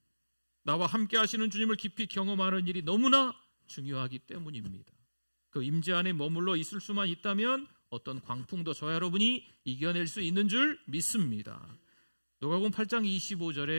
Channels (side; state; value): both; inverted; correlation -1.00